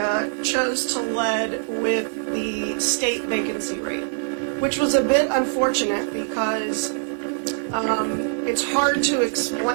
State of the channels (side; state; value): left; silent; digital silence